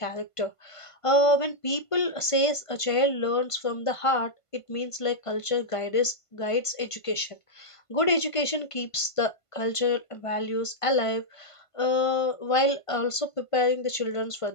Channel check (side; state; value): right; late; 1.5 ms